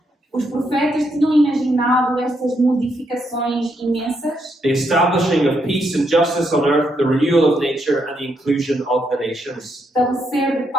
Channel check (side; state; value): both; normal; correlation 0.78